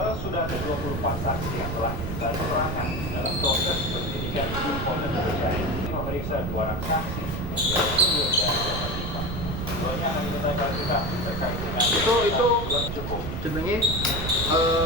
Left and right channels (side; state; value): right; noise; rumble, 5 dB below the sound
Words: sudah ada 24 saksi yang telah diminta keterangan dalam proses penyidikan di Polda Metro Jaya. Memeriksa 2 orang saksi, Suryo dan Jakarta. Keduanya akan diminta klarifikasi terkait dengan itu cukup. jenenge